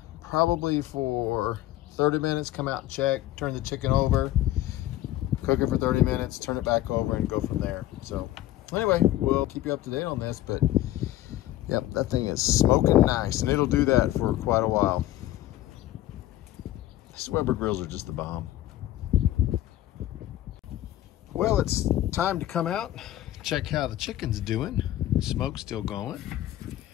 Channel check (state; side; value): quieter; right; 14.4 dB